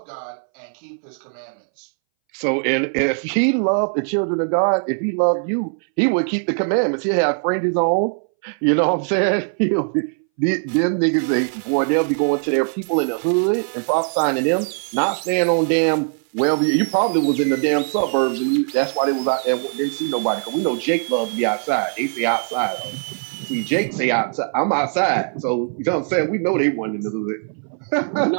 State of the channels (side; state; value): left; silent; 63 dB below the other